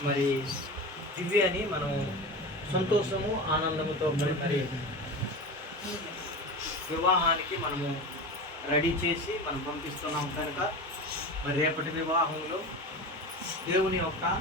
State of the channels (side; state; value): both; normal; correlation 0.28